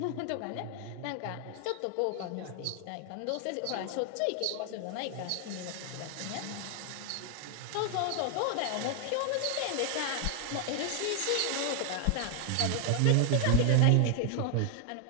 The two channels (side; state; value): both; different; correlation 0.00